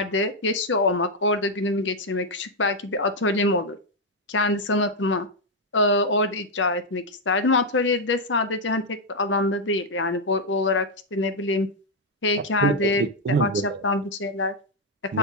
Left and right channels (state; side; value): normal; both; correlation 0.00